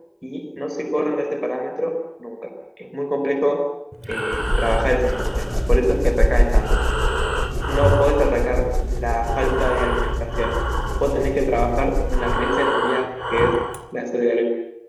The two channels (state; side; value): identical; both; correlation 1.00